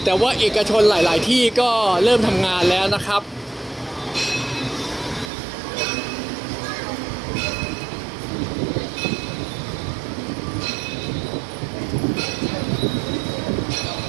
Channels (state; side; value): drops out; left; at 5.3 s